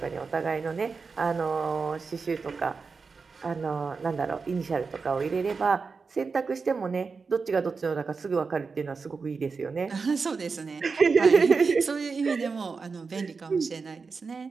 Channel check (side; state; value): left; quieter; 4.8 dB